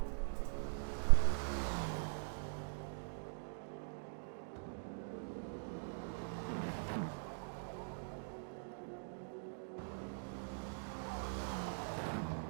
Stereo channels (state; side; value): silent; left; digital silence